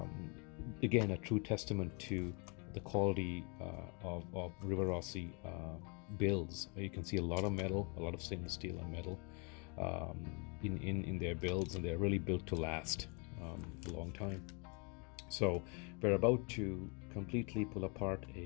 Again, a true testament to the quality of Rivarossi builds. You can see a lot of metal, a lot of stainless steel and metal in their builds, and they're really built to last a long time. So we're about to completely pull apart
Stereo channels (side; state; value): right; quieter; 33.4 dB